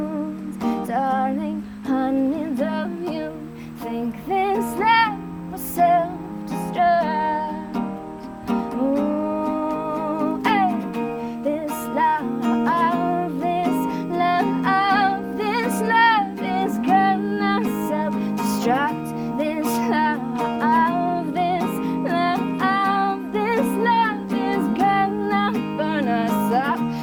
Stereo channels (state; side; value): identical; both; correlation 1.00